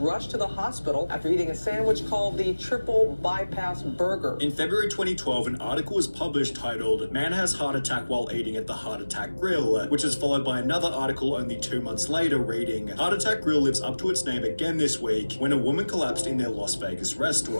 to the hospital after eating a sandwich called the triple bypass burger. In February 2012, an article was published titled "Man Has Heart Attack While Eating at the Heart Attack Grill," which is followed by another article only 2 months later reading, "Heart Attack Grill lives up to its name again this week when a woman collapsed in their Las Vegas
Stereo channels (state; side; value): inverted; both; correlation -1.00